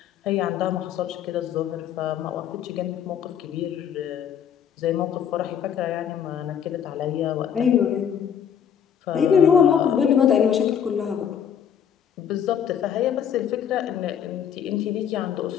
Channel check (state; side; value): quieter; right; 8.5 dB